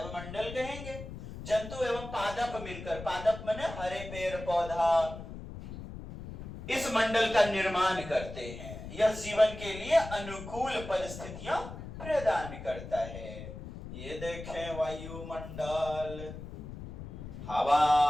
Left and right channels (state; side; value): noise; left; rumble, 11 dB below the sound